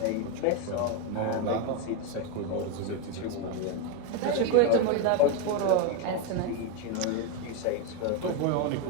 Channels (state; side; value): different; both; correlation 0.02